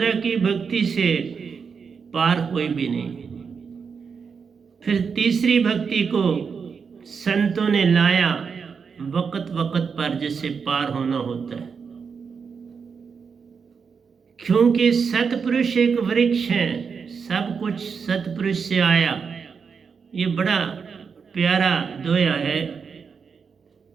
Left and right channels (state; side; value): quieter; left; 5.9 dB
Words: की भक्ति से पार कोई भी नहीं। फिर तीसरी भक्ति को संतों ने लाया, वक्त वक्त पर जिससे पार होना होता है। क्योंकि सतपुरुष एक वृक्ष है, सब कुछ सतपुरुष से आया। ये बड़ा प्यारा दोया है।